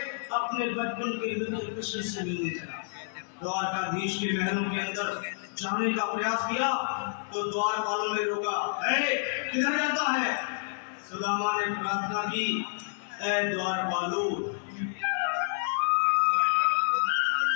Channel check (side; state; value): right; silent; digital silence